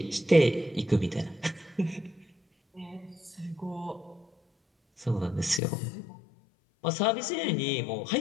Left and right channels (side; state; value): right; drops out; at 5.6 s